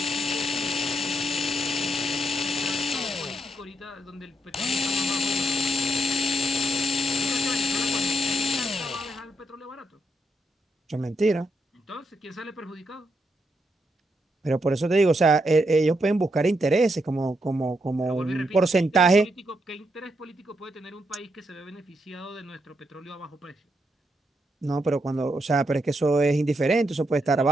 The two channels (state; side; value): normal; both; correlation 0.80